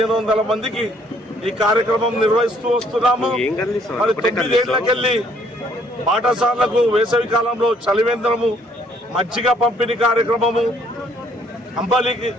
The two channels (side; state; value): both; normal; correlation 0.64